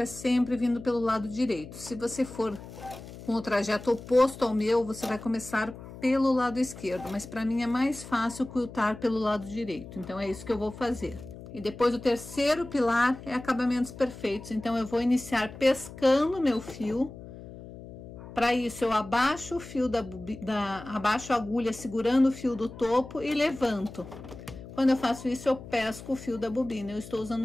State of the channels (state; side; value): noise; left; hum, 14 dB below the sound